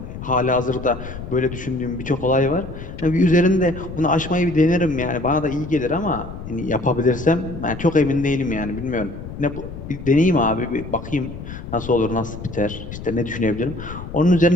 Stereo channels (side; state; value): left; noise; rumble, 11 dB below the sound